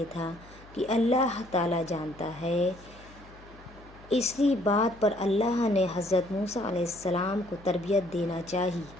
تھا کہ اللہ تعالیٰ جانتا ہے۔ اسی بات پر اللہ نے حضرت موسیٰ علیہ السلام کو تربیت دینا چاہی،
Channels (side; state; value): left; noise; hum, 22 dB below the sound